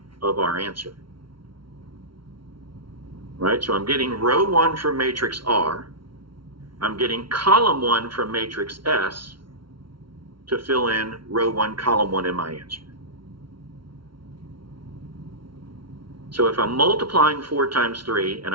of our answer. Right, so I'm getting row 1 from matrix R. I'm getting column 1 from matrix S to fill in row 1, column 1 in my answer. So if I'm multiplying 4 times 3 and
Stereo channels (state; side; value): late; left; 0.74 ms